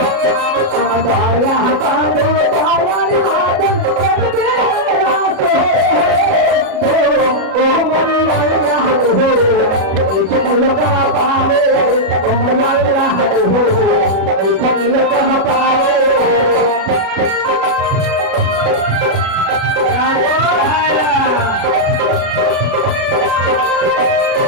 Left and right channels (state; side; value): late; left; 37 ms